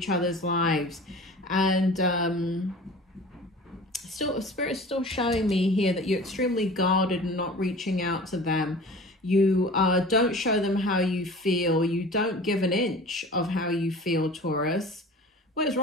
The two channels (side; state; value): both; normal; correlation 0.40